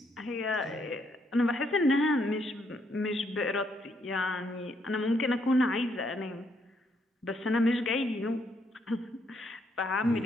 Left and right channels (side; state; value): both; normal; correlation 0.74